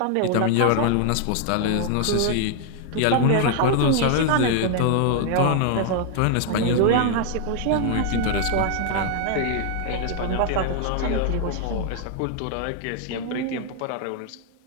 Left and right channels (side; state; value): both; different; correlation 0.00